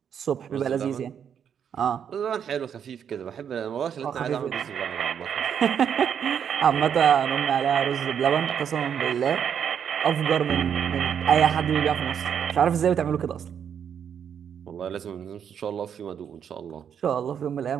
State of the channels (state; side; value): quieter; left; 8.2 dB